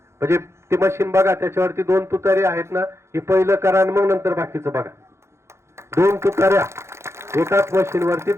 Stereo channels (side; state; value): left; late; 0.13 ms